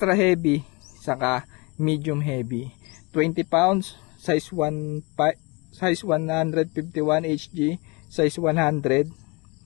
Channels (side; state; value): right; quieter; 27.9 dB